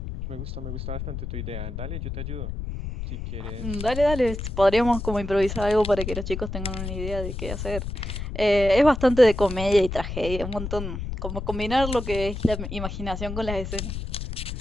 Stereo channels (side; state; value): left; noise; rumble, 6 dB below the sound